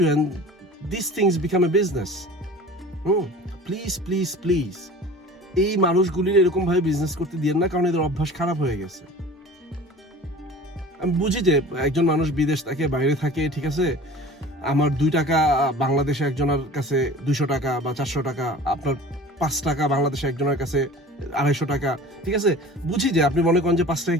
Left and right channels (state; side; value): normal; both; correlation 0.41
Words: and these things become a business. Please please please এই মানুষগুলির এরকম ভাবে বিজনেস করতে দিয়েন না, কারণ এদের অভ্যাস খারাপ হয়ে গেছে। আমি বুঝি যে একজন মানুষ বিদেশ থাকে, বাইরে থাকে, ঠিক আছে, আমার 2 টাকা বাংলাদেশে একজনের কাছে 200 টাকা বা 400 টাকা, আপনার 5 টাকা বাংলাদেশে একজনের কাছে 250 টাকা, ঠিক আছে? বুঝি যে আপনি মনে করেন যে 5 টাকা